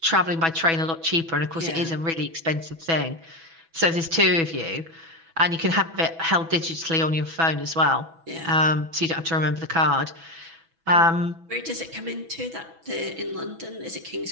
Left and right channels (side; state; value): left; late; 6.1 ms